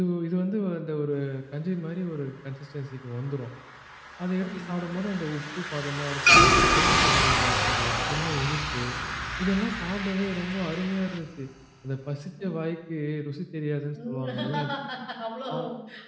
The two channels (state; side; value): identical; both; correlation 1.00